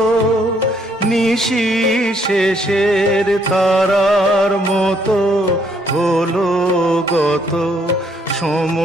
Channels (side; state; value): both; normal; correlation 0.69